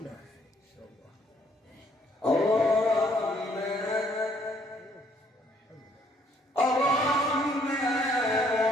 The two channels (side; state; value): both; normal; correlation 0.66